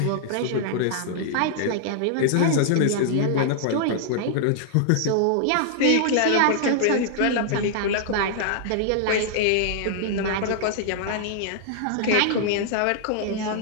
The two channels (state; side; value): different; both; correlation -0.01